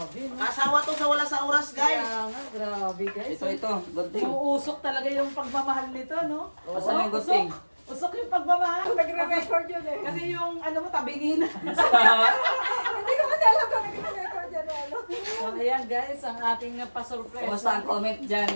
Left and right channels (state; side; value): inverted; both; correlation -1.00